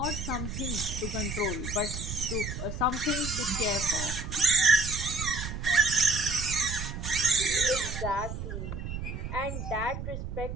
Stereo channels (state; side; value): noise; right; rumble, 6 dB below the sound